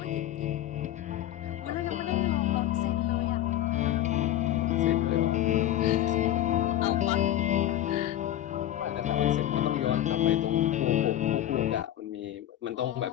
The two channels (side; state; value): right; quieter; 12.6 dB